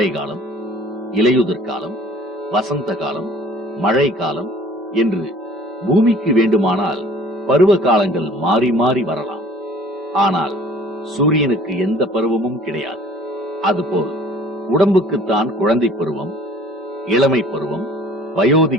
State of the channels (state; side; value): normal; both; correlation 0.50